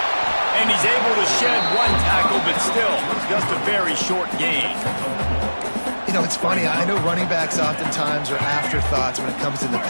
And he's able to shed one tackle, but still, just a very short gain. You know, it's funny. I know running backs oftentimes are afterthoughts when it comes to the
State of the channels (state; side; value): inverted; both; correlation -1.00